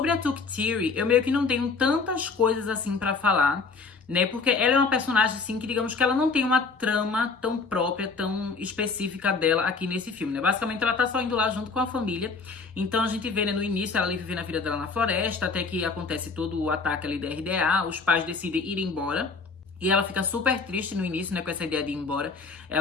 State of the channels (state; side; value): quieter; right; 4.5 dB